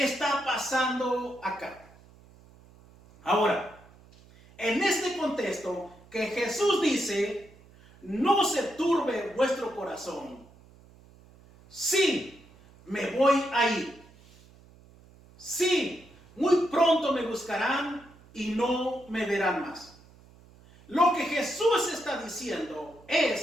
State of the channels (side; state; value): right; noise; hum, 25 dB below the sound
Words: pasando acá? Ahora, en este contexto que Jesús dice: no se turbe vuestro corazón. Sí, me voy a ir. Sí, muy pronto me buscarán y no me verán más. Lo que Jesús está diciendo